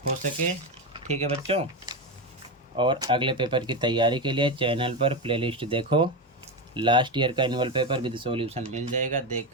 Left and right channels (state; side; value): normal; both; correlation 0.14